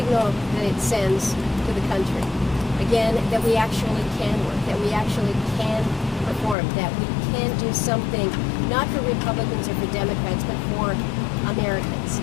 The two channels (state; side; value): drops out; right; at 6.6 s